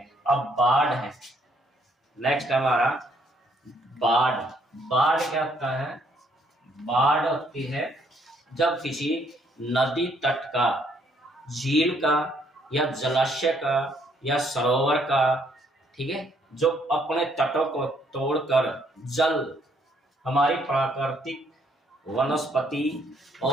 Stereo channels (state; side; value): normal; both; correlation 0.68